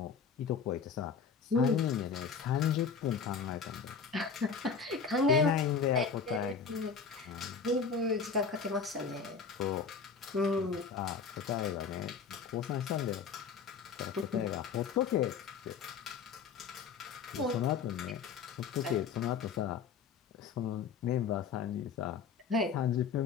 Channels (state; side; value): quieter; right; 5.9 dB